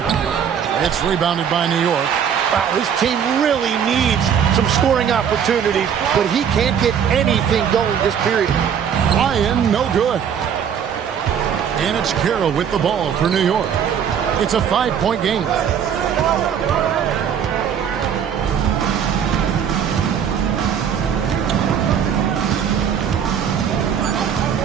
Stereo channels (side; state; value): left; quieter; 8.1 dB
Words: It's rebounded by New York. Wow, his team really needs some scoring opportunities, but he can't get anything going this period. Ryan, no good. And it's Carroll with the ball for New York. It's a 5-point game.